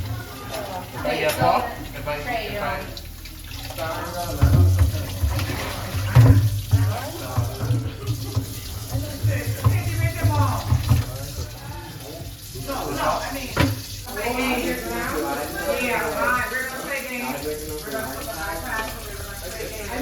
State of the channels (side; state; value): both; identical; correlation 1.00